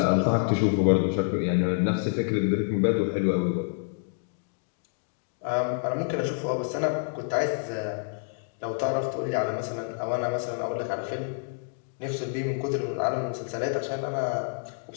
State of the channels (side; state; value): right; silent; digital silence